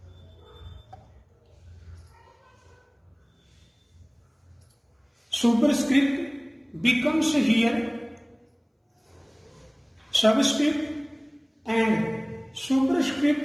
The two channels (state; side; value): identical; both; correlation 1.00